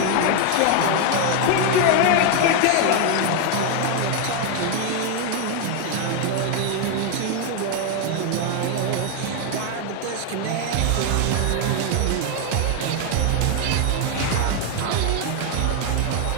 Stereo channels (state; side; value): different; both; correlation 0.01